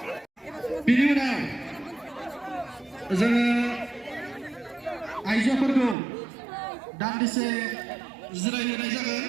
Biनि unaव जोङो आइजोफोरखौ दान्दिसे जिरायहोनाय जागोन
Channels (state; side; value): drops out; left; at 6.0 s